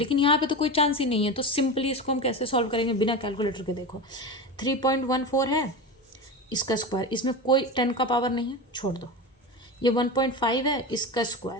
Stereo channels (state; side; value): normal; both; correlation 0.24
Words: यहाँ पे तो कोई चांस ही नहीं है, तो सिंपली इसको हम कैसे सॉल्व करेंगे बिना कैलकुलेटर के? देखो 3.14 है, इसका स्क्वायर, इसमें कोई 10 का पावर नहीं है, छोड़ दो। ये 1.5 है, इसका